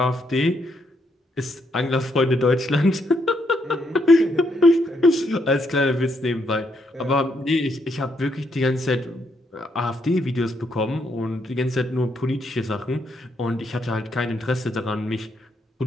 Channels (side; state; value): both; normal; correlation 0.76